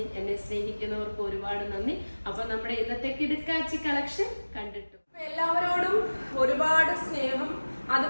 എന്നെ സ്നേഹിക്കുന്നവർക്ക് ഒരുപാട് നന്ദി. അപ്പൊ നമ്മുടെ ഇന്നത്തെ കിടുക്കാച്ചി കളക്ഷൻ കണ്ടിട്ടു. എല്ലാവരോടും ഒരുപാട് സ്നേഹം.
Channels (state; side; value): inverted; both; correlation -1.00